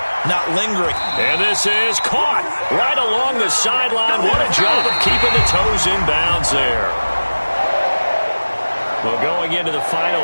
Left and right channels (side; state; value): both; inverted; correlation -1.00